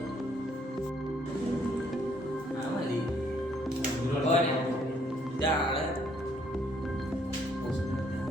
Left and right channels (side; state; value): both; normal; correlation 0.67